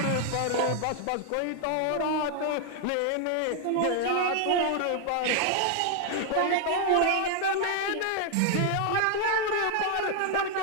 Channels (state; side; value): different; both; correlation 0.00